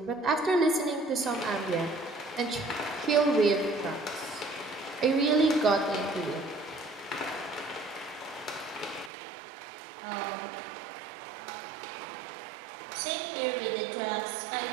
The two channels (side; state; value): left; drops out; at 9.1 s